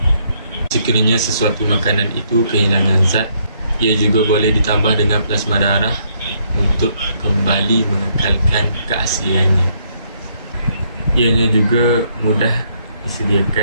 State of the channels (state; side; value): inverted; both; correlation -0.71